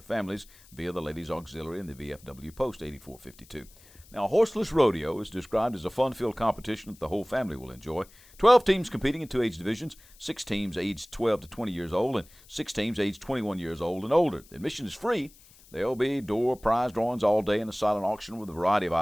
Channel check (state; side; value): noise; left; hiss, 25 dB below the sound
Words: families via the Ladies Auxiliary and the VFW Post 8452. Now, Horseless Rodeo is described as a fun-filled competition that the whole family will enjoy. 12 teams competing in 2 age divisions, 6 teams aged 12 to 20 years old, and 6 teams aged 21 years old and older. Admission is free. There will be door prize drawings all day and a silent auction with a variety of